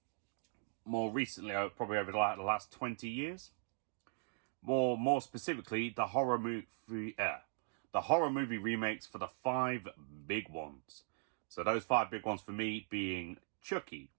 more recently, probably over the last 20 years. More specifically, the horror movie remakes for the 5 big ones. So those 5 big ones for me being Chucky,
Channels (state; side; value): silent; left; digital silence